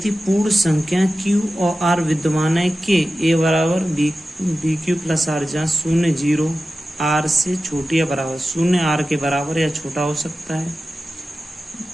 पूर्ण संख्या क्यू और आर विद्यमान है कि ए बराबर बी क्यू प्लस आर, जहाँ शून्य 0 आर से छोटी या बराबर, शून्य आर के बराबर या छोटा हो सकता है,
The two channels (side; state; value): both; normal; correlation 0.94